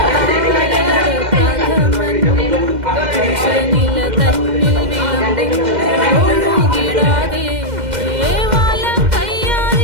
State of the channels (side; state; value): left; late; 2.1 ms